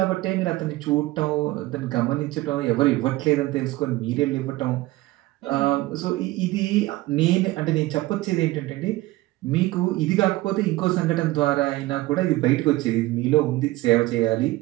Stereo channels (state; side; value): quieter; left; 18.6 dB